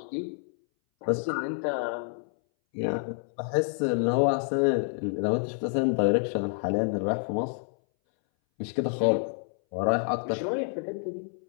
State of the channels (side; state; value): right; silent; 59 dB below the other